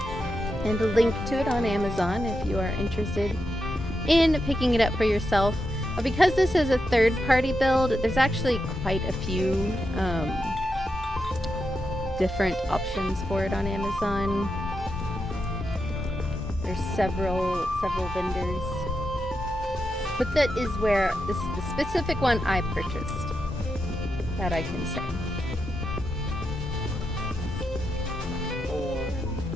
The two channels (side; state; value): both; normal; correlation 0.86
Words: and a link to it on Amazon if you are interested in picking it up for yourself. Because this is a third-party build, there's actually quite a few different options for it on Amazon. There's several vendors, but that is where this is the specific one I purchased. That I can say.